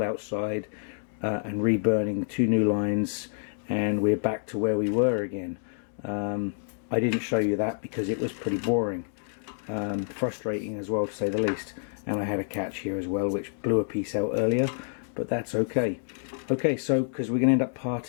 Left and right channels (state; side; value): silent; right; digital silence